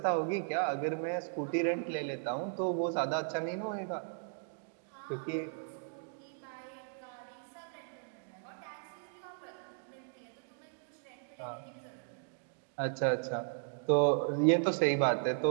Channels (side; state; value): left; silent; digital silence